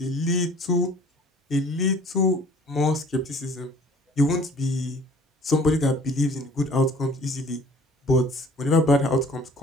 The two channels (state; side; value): normal; both; correlation 0.52